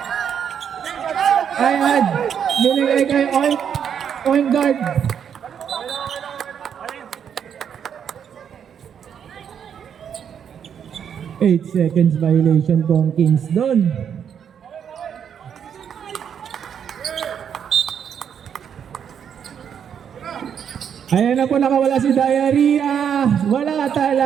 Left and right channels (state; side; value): quieter; left; 8.1 dB